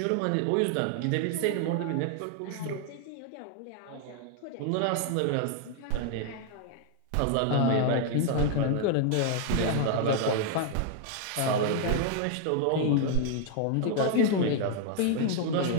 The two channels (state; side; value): different; both; correlation 0.00